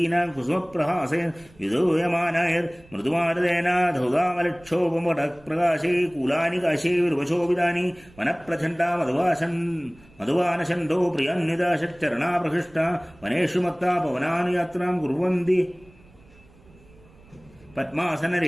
കുസുമപ്രഹാസേ വിദൂയമാനായർ മൃദുമാരദേനാധൗതാമലക്ഷോപമടപ്രകാശേ കൂലാനി കാശേ വിരുവശോഭിതാനി വനപ്രചണ്ഡാ മധുവാനശണ്ഡോ പ്രിയാന്വിതാ ഷച്ചരണാപ്രഹൃഷ്ട വനേഷു മത്താ പവനാനുയാത്രാം കുർവന്തി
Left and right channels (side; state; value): right; noise; rumble, 26 dB below the sound